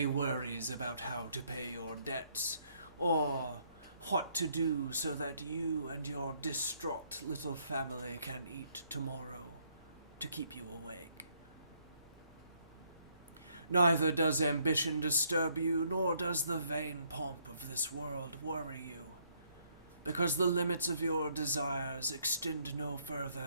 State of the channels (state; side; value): inverted; both; correlation -0.69